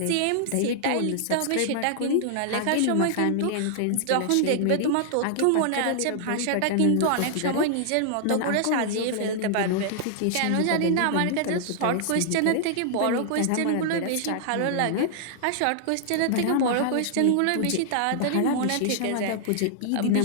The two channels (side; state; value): both; different; correlation -0.01